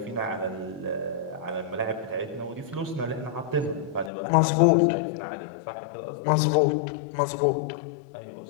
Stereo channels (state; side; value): drops out; right; at 4.1 s